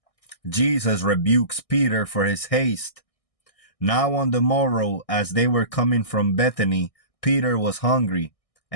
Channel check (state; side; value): late; right; 1.6 ms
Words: Jesus rebukes Peter for his haste. Now on the morrow, as they were coming from Bethany, Peter was hungry,